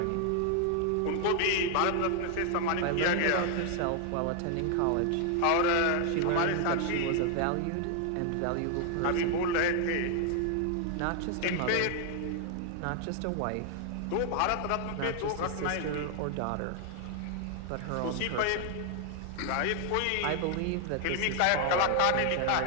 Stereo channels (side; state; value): both; different; correlation 0.00